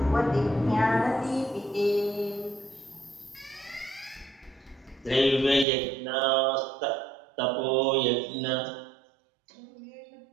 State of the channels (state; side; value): drops out; left; at 5.7 s